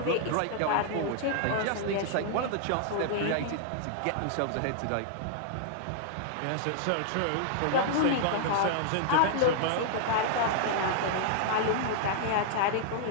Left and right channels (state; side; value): different; both; correlation -0.01